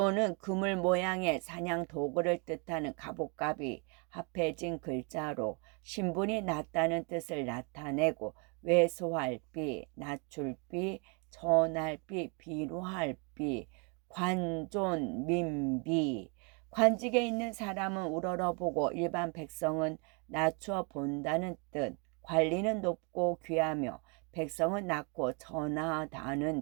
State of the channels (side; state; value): left; quieter; 34.3 dB